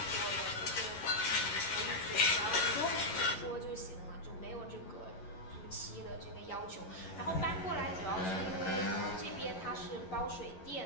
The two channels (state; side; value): late; right; 11 ms